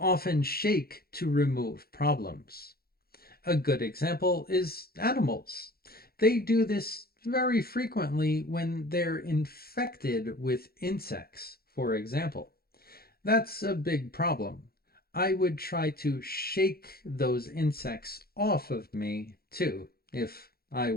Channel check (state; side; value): late; right; 0.44 ms